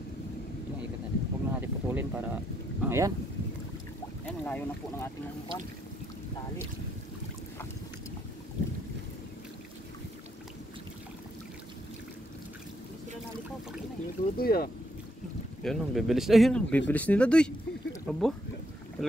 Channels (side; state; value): both; normal; correlation 0.76